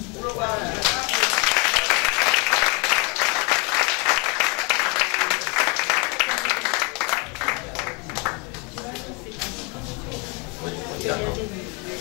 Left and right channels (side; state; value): right; quieter; 31.6 dB